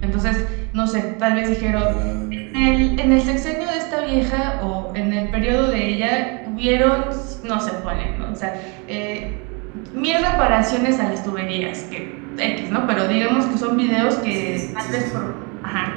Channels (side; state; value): left; quieter; 32.1 dB